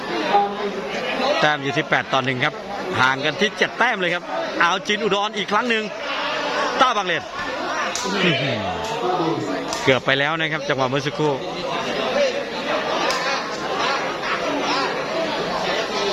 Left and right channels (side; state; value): both; identical; correlation 1.00